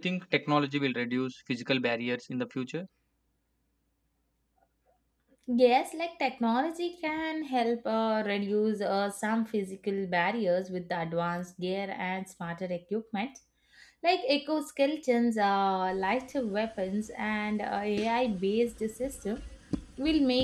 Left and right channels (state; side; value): identical; both; correlation 1.00